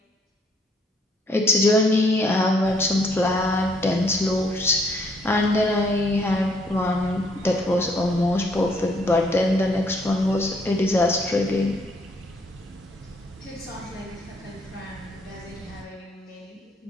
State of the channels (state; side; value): normal; both; correlation 0.67